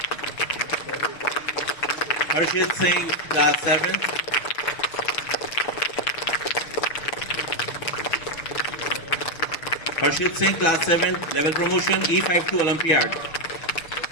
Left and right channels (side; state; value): right; late; 6.5 ms